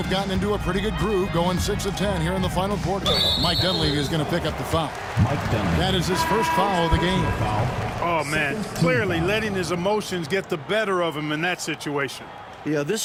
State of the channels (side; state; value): both; identical; correlation 1.00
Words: gotten into a pretty good groove, going 6 of 10 here in the final quarter. Mike Dunleavy is going to pick up the foul. That is his first foul of the game. Oh, man, clearly letting his emotions get the better of him in that situation. Yeah,